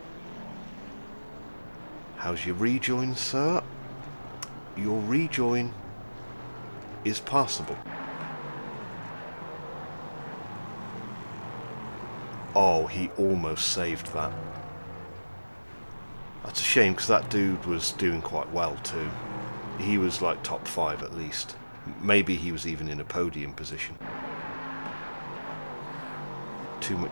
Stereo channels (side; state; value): both; inverted; correlation -1.00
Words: How's your rejoin, sir? Your rejoin is passable. Oh, he almost saved that. That's a shame, because that dude was doing quite well too. He was like top 5 at least. Maybe he was even in a podium position. Too